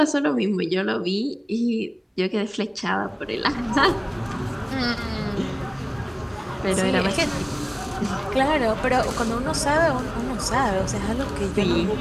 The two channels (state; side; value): identical; both; correlation 1.00